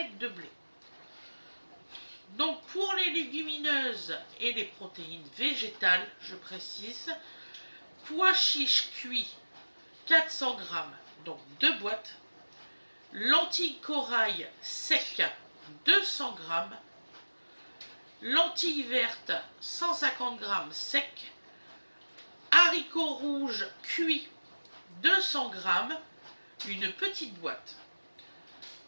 de blé. Donc pour les légumineuses et les protéines végétales, je précise, pois chiches cuits 400 g, donc 2 boîtes, lentilles corail sec 200 g, lentilles vertes 150 g sec, haricots rouges cuits 200 g, une petite boîte,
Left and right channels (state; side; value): inverted; both; correlation -1.00